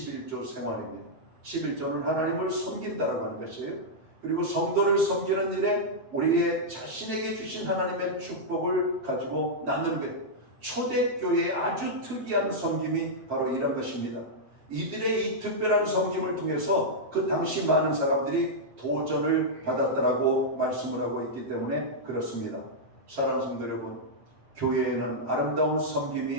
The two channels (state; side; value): late; left; 7.8 ms